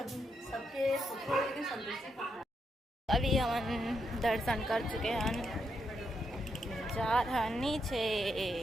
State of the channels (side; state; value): both; normal; correlation 0.81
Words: अभी हम दर्शन कर चुके हैं, जा रहा नीचे।